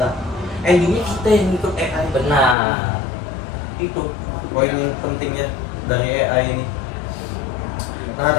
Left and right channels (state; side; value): drops out; right; at 2.6 s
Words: Endingnya kita yang ikut AI. Benar. Itu poin yang pentingnya dari AI ini. Nah